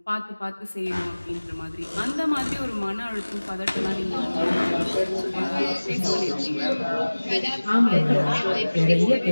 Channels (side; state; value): both; inverted; correlation -1.00